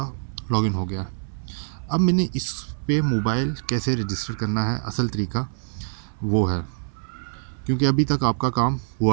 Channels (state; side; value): silent; left; 57 dB below the other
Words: लॉगिन हो गया। अब मैंने इस पे मोबाइल कैसे रजिस्टर करना है, असल तरीका वो है, क्योंकि अभी तक आपका काम